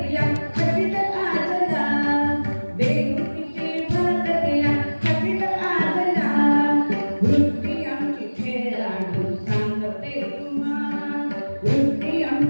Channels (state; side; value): inverted; both; correlation -1.00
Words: खचित आजला, देवकीची भरत तिला खचित आजला. वृत्ती आमची खेळाडू सांगते तुम्हा, वृत्ती